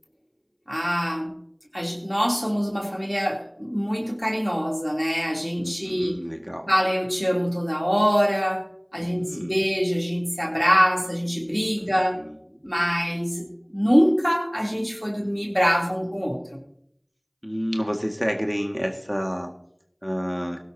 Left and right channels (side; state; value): both; identical; correlation 1.00